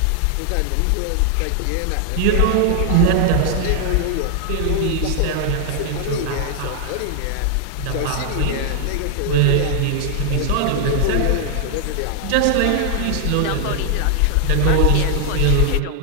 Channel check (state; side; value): different; both; correlation 0.00